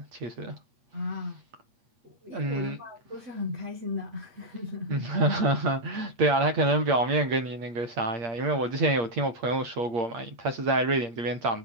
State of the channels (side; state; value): left; late; 8.4 ms